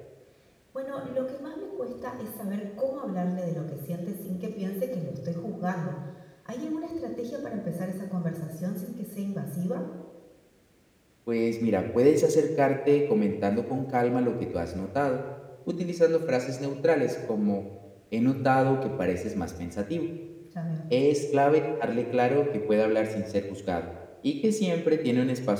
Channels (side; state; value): both; identical; correlation 1.00